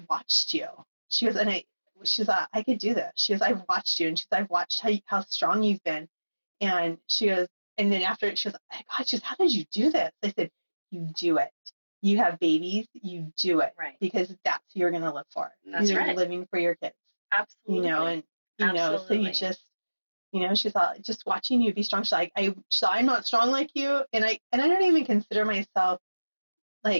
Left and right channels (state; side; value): inverted; both; correlation -1.00